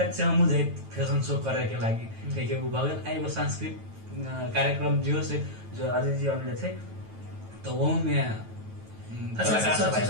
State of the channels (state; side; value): late; left; 9.2 ms